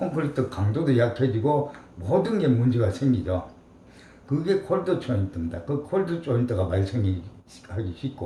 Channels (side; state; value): both; identical; correlation 1.00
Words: 강도도 약해지고 모든 게 문제가 생기죠. 그게 콜드 조인트입니다. 그 콜드 조인트가 발생하기